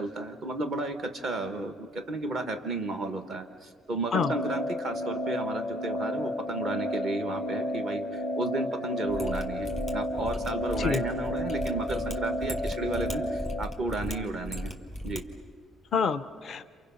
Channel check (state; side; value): normal; both; correlation 0.62